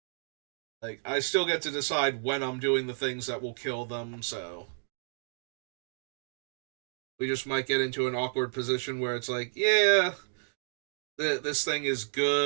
Like, I still get to decide when I'm doing the things that will kill them, so we just might get into an awkward position where it's like, yeah, this thing is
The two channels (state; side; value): silent; left; digital silence